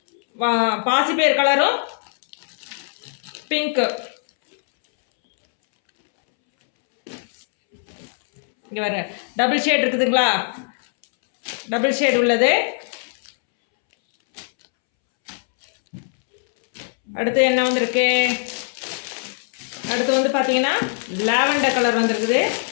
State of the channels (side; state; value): right; silent; 65 dB below the other